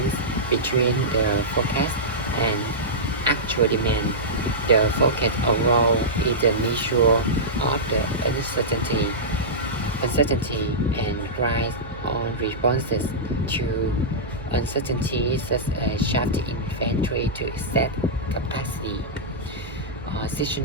between the forecast and actual demand. The forecast overall is a measure of the uncertainty and rise on responses to uncertainty such as shift inventory to excess capacity.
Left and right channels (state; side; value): noise; right; hum, 15 dB below the sound